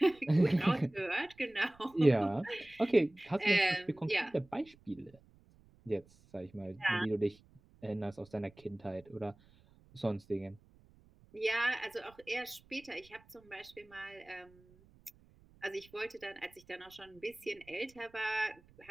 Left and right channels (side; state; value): right; noise; rumble, 27 dB below the sound